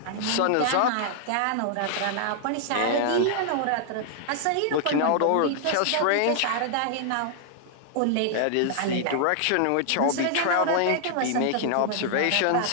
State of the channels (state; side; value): different; both; correlation -0.01